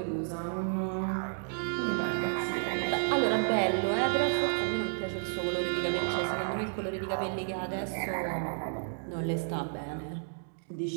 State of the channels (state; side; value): silent; left; digital silence